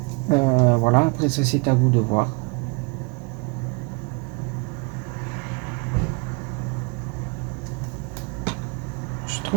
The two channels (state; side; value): quieter; left; 30.5 dB